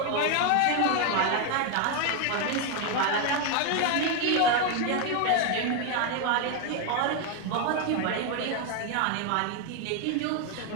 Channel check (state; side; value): different; both; correlation 0.01